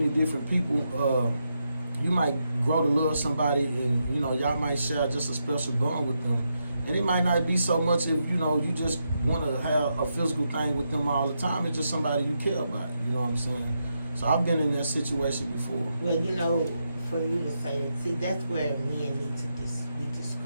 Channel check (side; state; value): both; inverted; correlation -0.83